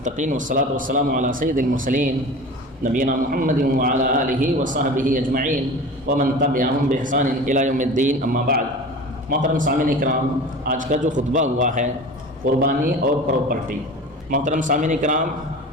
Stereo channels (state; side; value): normal; both; correlation 0.36